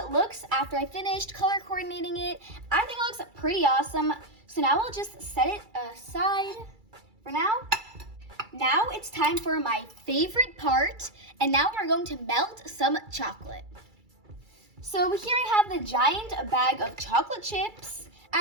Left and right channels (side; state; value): left; late; 2.3 ms